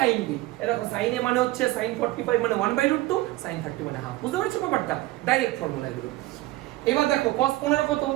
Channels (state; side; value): quieter; left; 18.2 dB